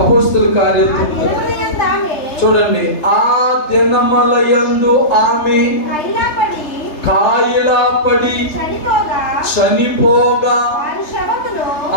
కార్యాలు చూడండి. ఆ దినములయందు ఆమె కాయలాపడి చనిపోగా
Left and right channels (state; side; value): late; right; 3.3 ms